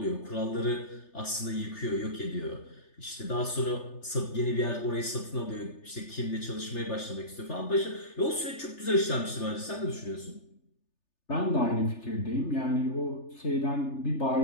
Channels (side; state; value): right; late; 3.3 ms